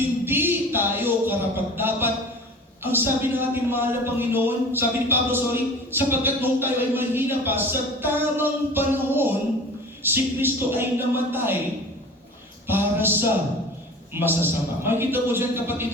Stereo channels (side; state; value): both; normal; correlation 0.39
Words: tayo karapat-dapat, ang sabi ng ating mahal na Panginoon, sabi ni Pablo, sapagkat nung tayo ay mahina pa, sa tamang panahon, si Kristo ay namatay para sa masasama. Makikita ko dyan, kapatid,